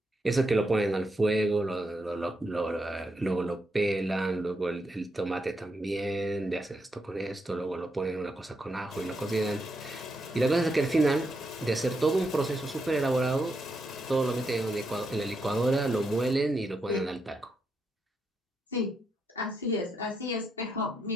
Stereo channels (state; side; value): normal; both; correlation 0.82